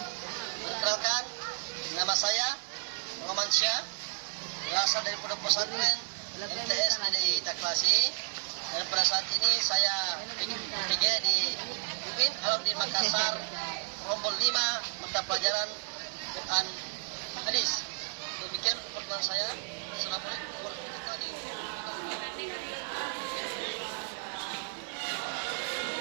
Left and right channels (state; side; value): silent; left; digital silence